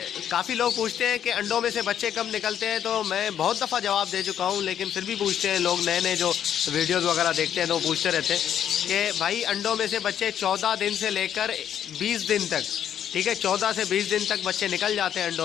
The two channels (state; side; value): quieter; right; 9.7 dB